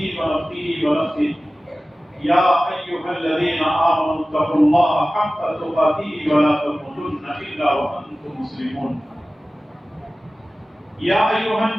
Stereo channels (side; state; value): both; normal; correlation 0.96